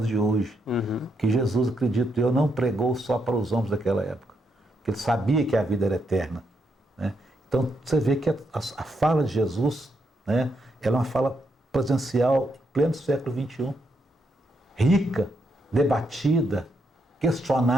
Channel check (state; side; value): normal; both; correlation 0.79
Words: de hoje. Que Jesus, acredito eu, não pregou só para os homens daquela época, porque ele sabia que a vida era eterna. Né? Então você vê que a fala de Jesus, né, ela é uma fala presencial em pleno século XXI, rica, debatida,